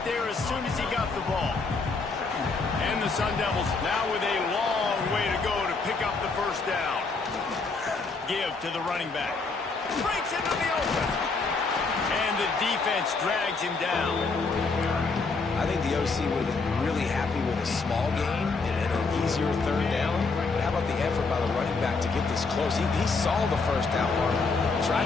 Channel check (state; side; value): quieter; right; 4.2 dB